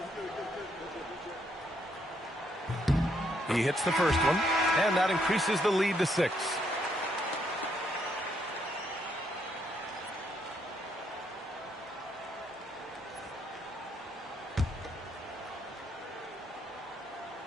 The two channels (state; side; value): normal; both; correlation 0.74